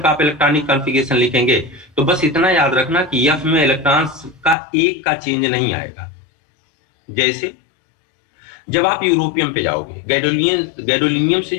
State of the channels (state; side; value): drops out; right; at 4.5 s